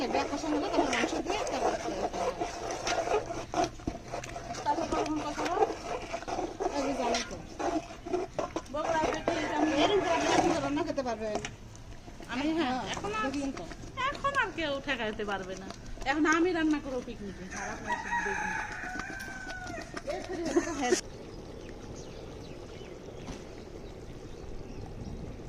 লাগবে, কষান হলে তারপর মাংস দিয়ে তারপর কখন কষাবো? আমি জানি তো বগুড়া থেকে এরকম করে আপনি এখন তো রান্না খেতে পারবেন। আমি হ্যাঁ দেখলেন তো এখন আর কেউ ঠেকাইতে পারবে না। এখন আমি রান্না করবো পিকনিকে, আর আপনারা শুধু দেখুন।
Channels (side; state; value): both; identical; correlation 1.00